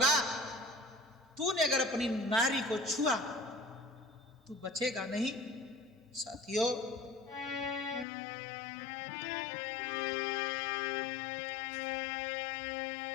तूने अगर अपनी नारी को छुआ तू बचेगा नहीं। साथियों,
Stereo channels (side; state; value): right; drops out; at 8.1 s